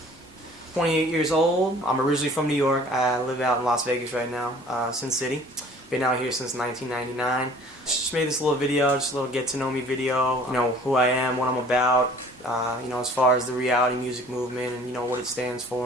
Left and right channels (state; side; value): normal; both; correlation 0.51